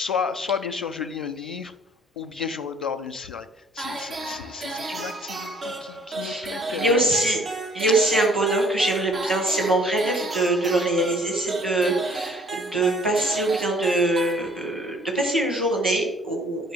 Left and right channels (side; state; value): both; normal; correlation 0.57